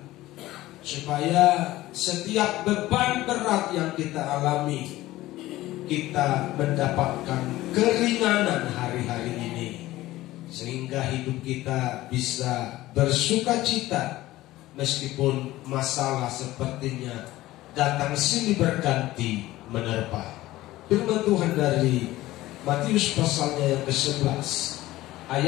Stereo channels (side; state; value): right; quieter; 16.7 dB